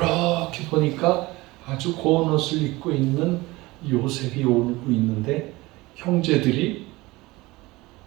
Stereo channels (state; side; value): quieter; left; 21.0 dB